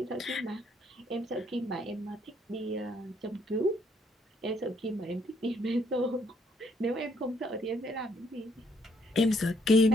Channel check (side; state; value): both; normal; correlation 0.69